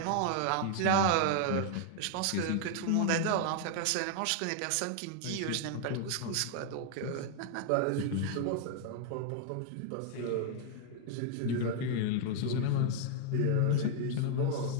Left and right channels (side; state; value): both; different; correlation 0.00